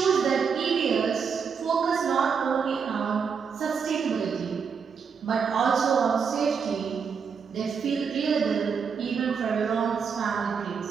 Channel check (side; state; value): left; quieter; 6.2 dB